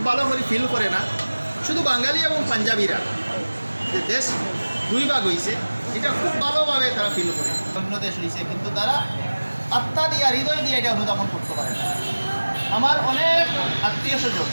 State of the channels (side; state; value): both; inverted; correlation -1.00